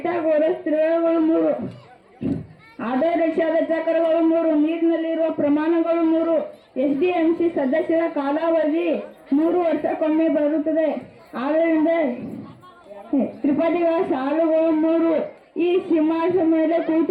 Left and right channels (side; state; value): both; identical; correlation 1.00